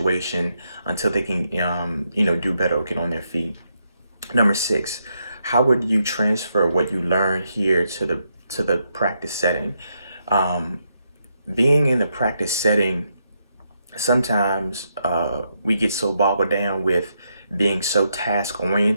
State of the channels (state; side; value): inverted; both; correlation -0.80